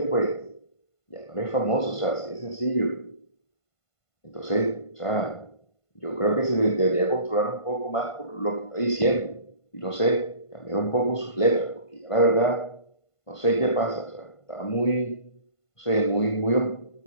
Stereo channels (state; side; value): late; right; 1.5 ms